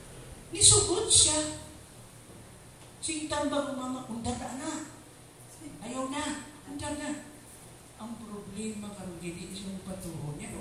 Nisugod siya. Sintang bago mama, undar na. Ayaw na, undar na. Ang problema karong gini isang patuon niya.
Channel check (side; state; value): both; identical; correlation 1.00